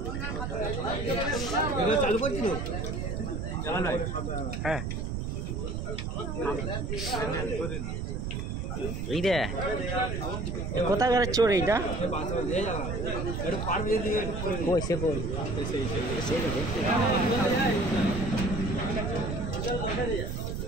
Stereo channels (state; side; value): noise; right; rumble, 3 dB below the sound